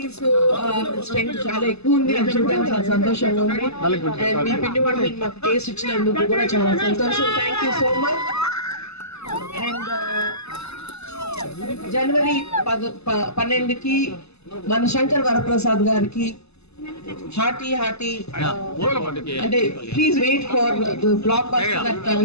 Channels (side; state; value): right; late; 0.79 ms